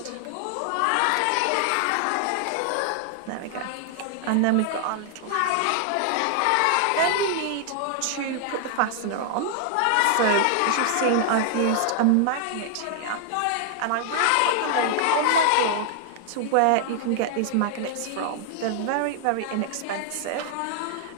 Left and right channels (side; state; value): both; different; correlation 0.00